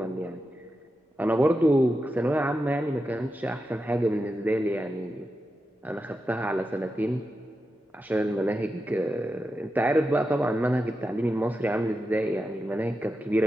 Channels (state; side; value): normal; both; correlation 0.89